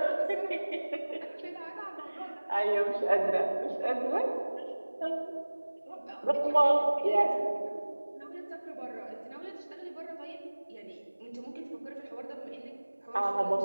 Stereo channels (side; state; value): both; inverted; correlation -1.00